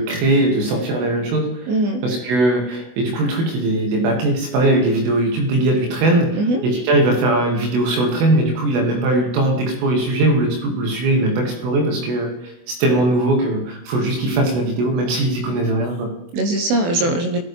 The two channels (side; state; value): left; late; 24 ms